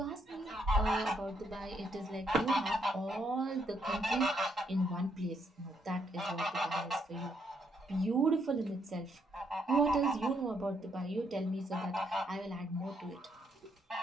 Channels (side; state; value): both; normal; correlation 0.74